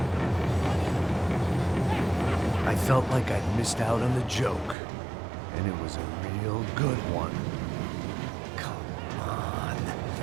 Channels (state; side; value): drops out; left; at 4.8 s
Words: I felt like I'd missed out on the joke, and it was a real good one. Come on.